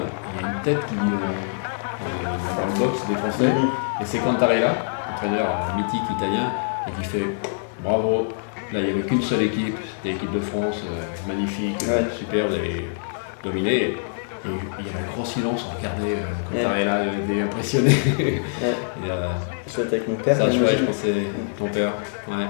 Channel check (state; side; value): silent; right; digital silence